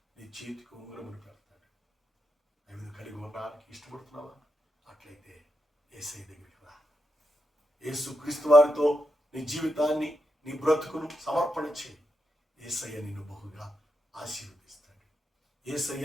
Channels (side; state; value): both; normal; correlation 0.85